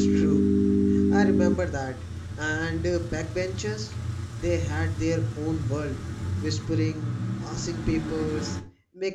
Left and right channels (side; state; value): both; identical; correlation 1.00